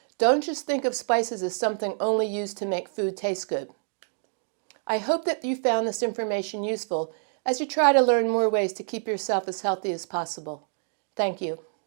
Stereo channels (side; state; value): left; silent; digital silence